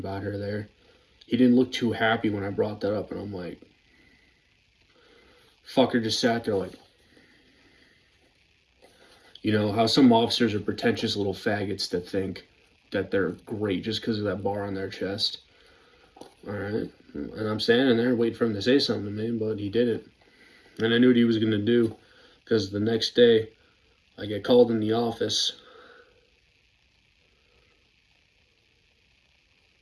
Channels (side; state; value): both; identical; correlation 1.00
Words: her there. He didn't look too happy when I brought that up, and I'm like, fucker just sat there like, you know, how some officers are pretentious little faggots that think that they're great just because of that bar on their chest. Alright, and I'm standing there waiting for him to say something to me, but he didn't. And I knew what he was going to do, because the next day, I get called in the office,